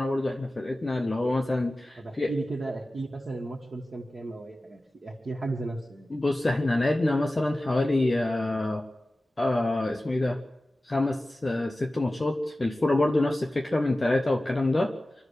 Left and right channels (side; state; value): both; normal; correlation 0.96